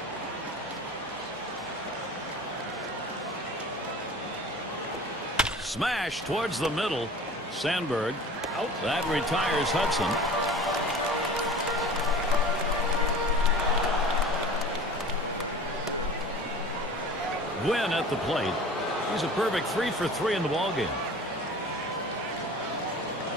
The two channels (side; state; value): both; normal; correlation 0.40